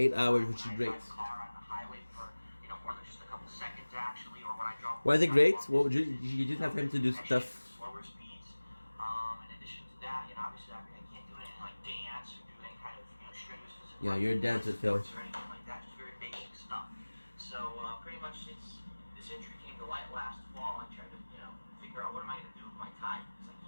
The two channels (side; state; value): both; inverted; correlation -1.00